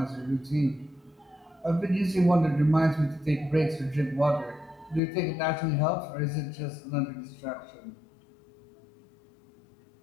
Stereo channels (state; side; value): drops out; right; at 5.0 s